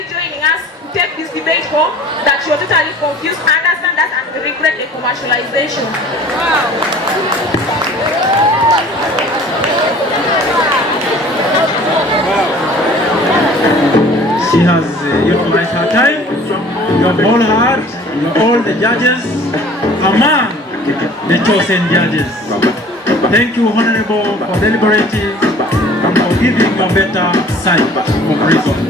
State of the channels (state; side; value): normal; both; correlation 0.48